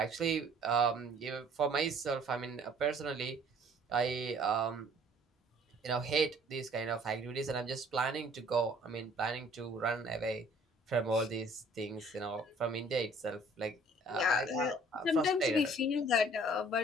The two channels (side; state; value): both; normal; correlation 0.56